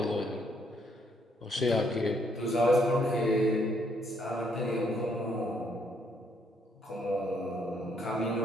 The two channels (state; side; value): normal; both; correlation 0.71